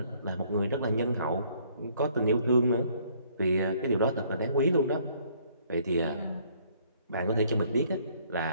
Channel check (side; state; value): both; inverted; correlation -0.63